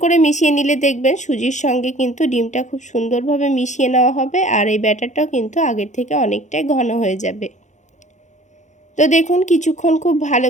করে মিশিয়ে নিলে দেখবেন সুজির সঙ্গে কিন্তু ডিমটা খুব সুন্দরভাবে মিশিয়ে নেওয়া হবে, আর এই ব্যাটারটাও কিন্তু আগের থেকে অনেকটাই ঘন হয়ে যাবে। তো দেখুন কিছুক্ষণ খুব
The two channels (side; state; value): right; late; 0.35 ms